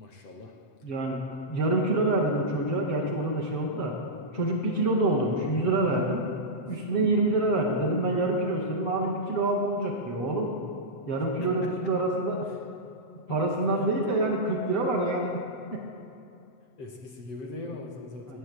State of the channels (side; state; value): right; late; 7.8 ms